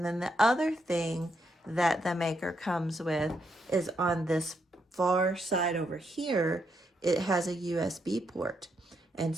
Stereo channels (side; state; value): both; normal; correlation 0.79